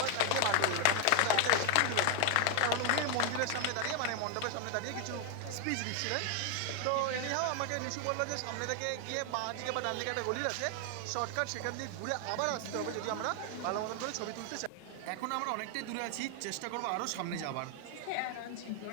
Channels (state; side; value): different; both; correlation 0.00